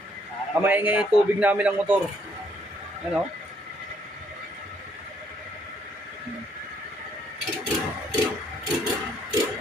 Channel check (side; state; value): both; normal; correlation 0.69